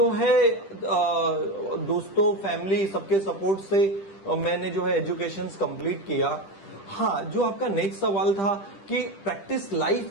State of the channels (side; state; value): right; late; 10 ms